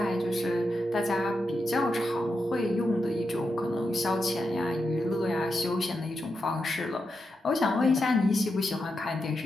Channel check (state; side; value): normal; both; correlation 0.87